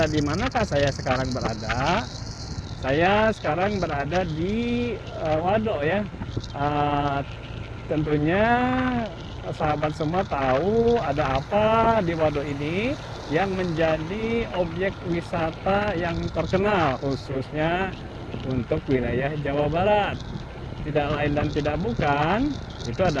di manakah saya sekarang berada? Saya sekarang berada di Waduk ya. Eh, Tentunya sahabat semua tahu ada apa di waduk ini yang menjadi objek wisata yang terkenal khususnya untuk wilayah Jawa Barat. Tidak lain dan tidak bukan, itu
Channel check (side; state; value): both; identical; correlation 1.00